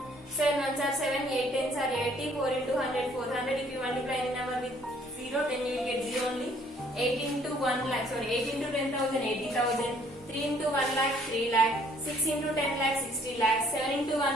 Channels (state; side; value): normal; both; correlation 0.62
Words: 7 ones are 7, 8 tens are 80, 4 into 100, 400. If you multiply any number with 0, then you will get 0 only. 8 into 1 lakh, 8 into 10,000, 80,000. 3 into 1 lakh, 3 lakh. 6 into 10 lakh, 60 lakh. 7 into